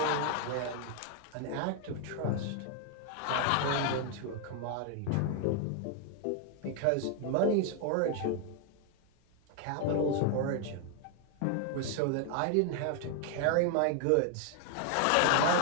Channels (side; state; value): both; different; correlation 0.00